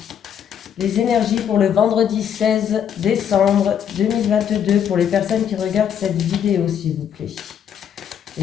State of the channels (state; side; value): quieter; right; 8.7 dB